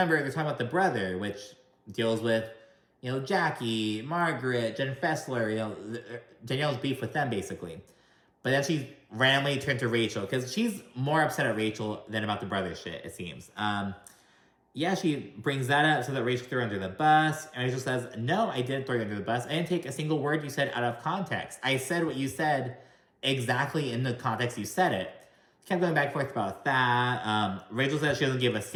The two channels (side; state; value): both; identical; correlation 1.00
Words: they're talking about the brother, which deals with, Jackie, Margaret, Jen Fessler, Danielle's beef with them, basically. But then she randomly turned to Rachel, because she's more upset at Rachel than about the brother shit, it seems. Yeah, she brings that up so that Rachel threw her under the bus. And Rachel says, no, I didn't throw you under the bus. I didn't take a single word you said out of context. I said what you said exactly in the context you said it. Kept going back and forth about that. Rachel says she doesn't give a